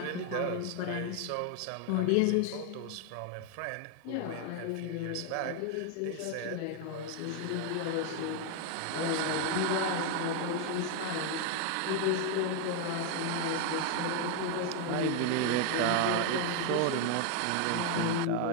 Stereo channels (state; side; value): different; both; correlation 0.01